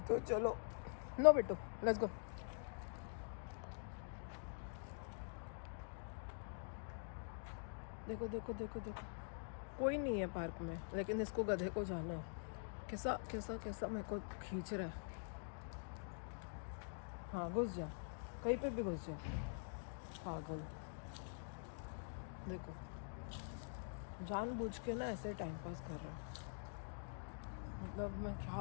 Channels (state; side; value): silent; right; digital silence